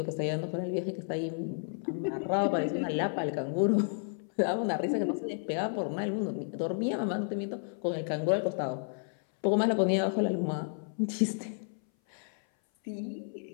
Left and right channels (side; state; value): right; silent; 57 dB below the other